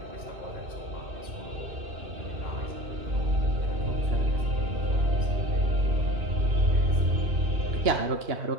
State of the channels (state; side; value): late; left; 2.9 ms